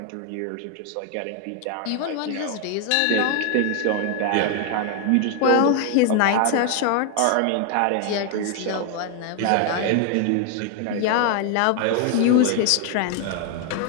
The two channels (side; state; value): both; different; correlation 0.00